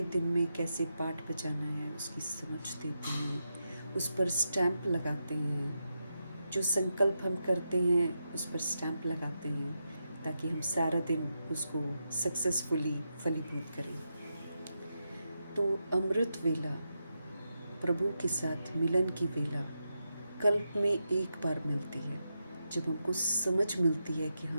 दिन में कैसे पाठ बजाना है उसकी समझ देते हैं, उस पर स्टैंप लगाते हैं, जो संकल्प हम करते हैं उस पर स्टैंप लगाते हैं ताकि हम सारा दिन उसको सक्सेसफुली फलीभूत करें। तो अमृत वेला, प्रभु के साथ मिलन की वेला कल्प में एक बार मिलती है, जब हमको समझ मिलती है कि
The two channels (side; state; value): both; inverted; correlation -0.86